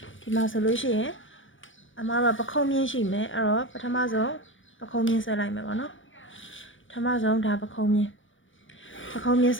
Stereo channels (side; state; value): right; late; 0.56 ms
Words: ဒီမှာဆိုလို့ရှိရင်အမားတို့ကပခုံးမြင်းရှိမယ်အဲ့တော့ပထမဆုံးပခုံးမြင်းဆွဲလိုက်မယ်ပေါ့နော်ပထမဆုံးဒါပခုံးမြင်းဆ